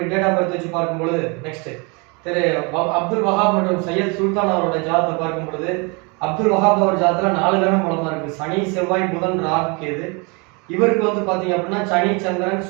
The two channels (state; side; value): quieter; left; 30.5 dB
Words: டேட் ஆஃப் பர்த் வச்சு பார்க்கும்பொழுது நெக்ஸ்ட் திரு அப்துல் வஹாப் மற்றும் சையத் சுல்தான் அவருடைய ஜாதகத்தை பார்க்கும் பொழுது அப்துல் வஹாப் அவர் ஜாதகத்தில் 4 கிரகம் பலமா இருக்கு. சனி, செவ்வாய், புதன், ராகு, கேது. இவருக்கு வந்து பாத்தீங்க அப்படின்னா சனி, சந்திரன்,